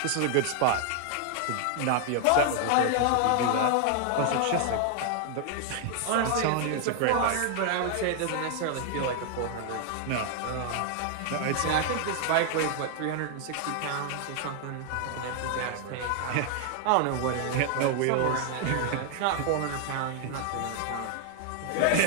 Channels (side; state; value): both; different; correlation 0.00